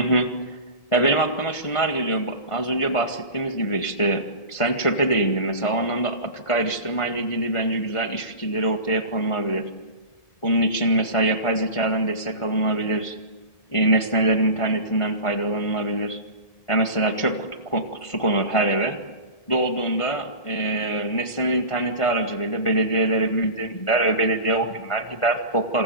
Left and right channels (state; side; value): late; right; 1.5 ms